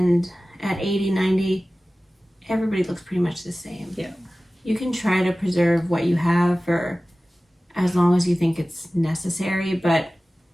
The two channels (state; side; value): normal; both; correlation 0.97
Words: at 80, 90, everybody looks pretty much the same. Yeah. You can try to preserve what you have for as long as you think it's necessary, but